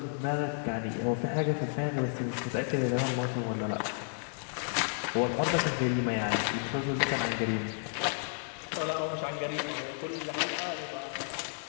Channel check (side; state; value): right; silent; digital silence